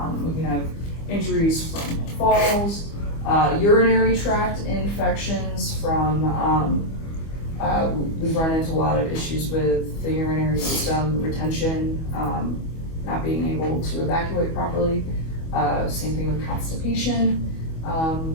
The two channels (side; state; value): right; late; 25 ms